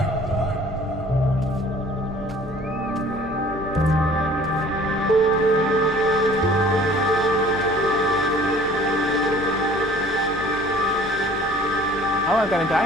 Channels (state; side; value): noise; left; hum, 17 dB below the sound